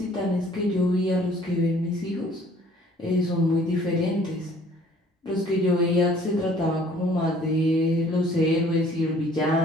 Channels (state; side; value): normal; both; correlation 0.56